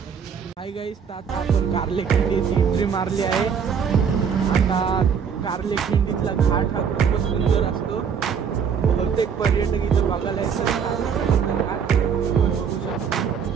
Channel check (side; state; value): left; quieter; 6.9 dB